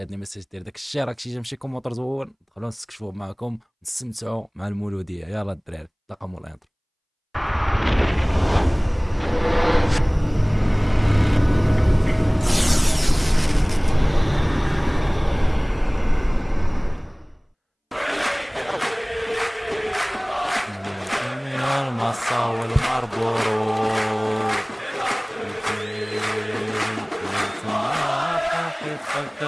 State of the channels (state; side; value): identical; both; correlation 1.00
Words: ميساج دير داك الشير، راك شي كومونتير زوين، دخلوا نستكشفوا معكم نستمتعوا مع المولوديه. يلا الدراري تلاقاو مولا الانترو. من المصا والمربورو